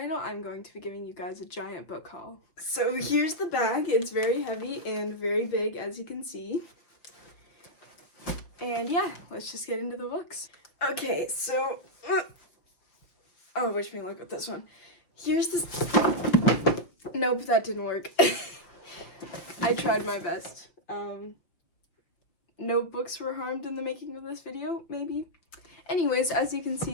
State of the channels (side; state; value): right; late; 5.7 ms